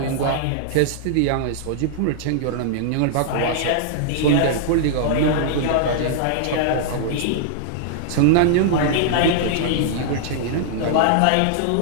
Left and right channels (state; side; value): different; both; correlation -0.01